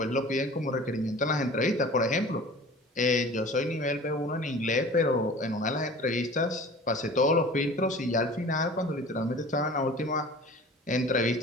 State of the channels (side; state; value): both; normal; correlation 0.42